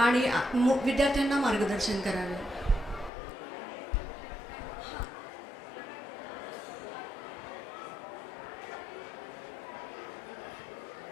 आणि विद्यार्थ्यांना मार्गदर्शन करावे.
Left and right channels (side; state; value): right; drops out; at 3.1 s